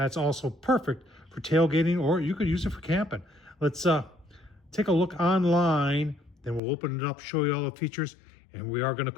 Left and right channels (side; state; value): right; drops out; at 6.6 s